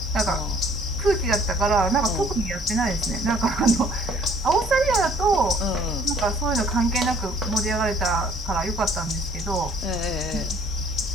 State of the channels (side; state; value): both; normal; correlation 0.58